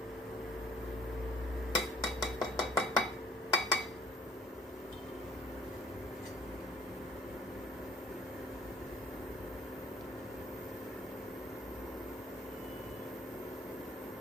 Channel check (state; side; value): normal; both; correlation 0.57